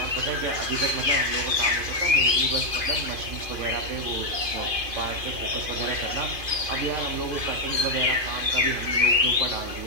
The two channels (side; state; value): left; late; 2.5 ms